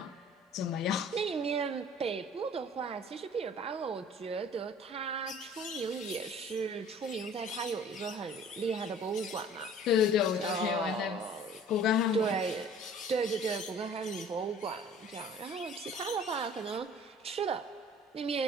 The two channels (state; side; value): normal; both; correlation 0.49